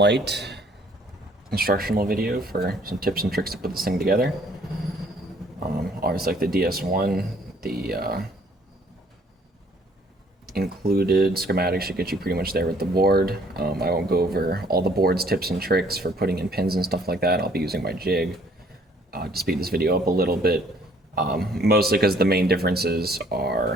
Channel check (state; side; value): normal; both; correlation 0.61